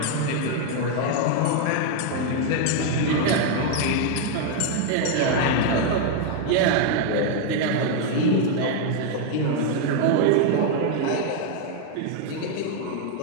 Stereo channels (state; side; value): different; both; correlation 0.00